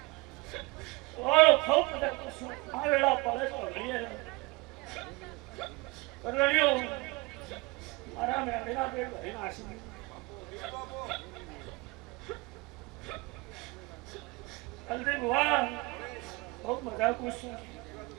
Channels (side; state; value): left; quieter; 24.6 dB